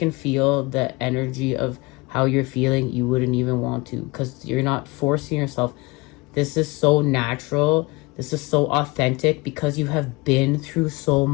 feel the energy of how you're feeling, you wouldn't even want to, because you're not forcing yourself. This is so natural. This is so authentic because you have been through so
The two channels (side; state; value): right; quieter; 24.7 dB